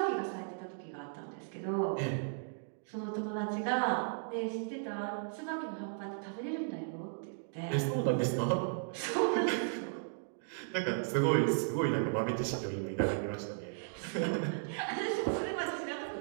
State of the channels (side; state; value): left; silent; digital silence